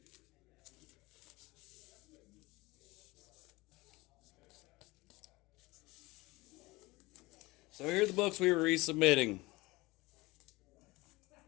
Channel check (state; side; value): quieter; right; 21.6 dB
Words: So here are the books we were resubmitting.